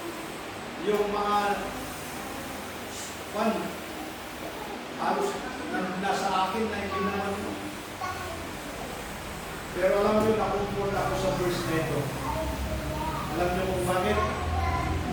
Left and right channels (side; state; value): both; identical; correlation 1.00